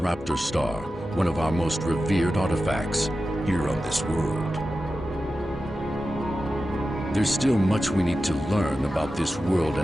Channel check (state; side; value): normal; both; correlation 0.93